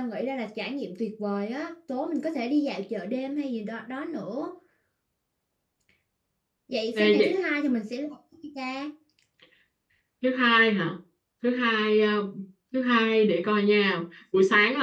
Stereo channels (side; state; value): both; identical; correlation 1.00